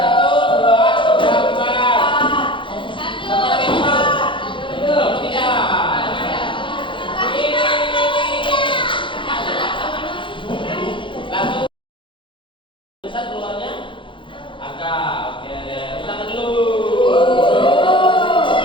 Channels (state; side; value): late; right; 0.24 ms